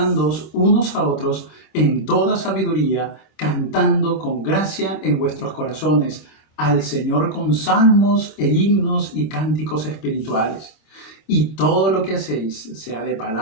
unos a otros en toda sabiduría, cantando con gracia en vuestros corazones al Señor con salmos e himnos y cánticos espirituales. Y todo lo que hacéis, sea de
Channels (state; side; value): late; right; 26 ms